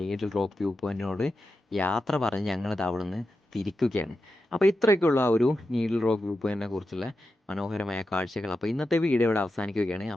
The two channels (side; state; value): both; normal; correlation 0.89